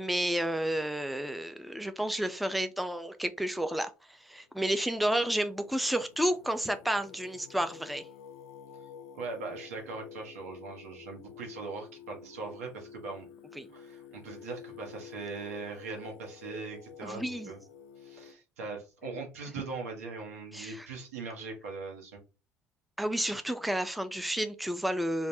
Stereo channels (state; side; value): normal; both; correlation 0.86